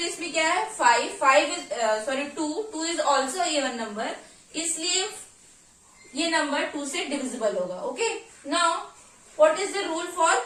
में क्या है 5 2 इज ऑल्सो इवन नंबर, इसलिए ये नंबर 2 से डिविजिबल होगा, okay. Now what is the rule for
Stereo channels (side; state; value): both; identical; correlation 1.00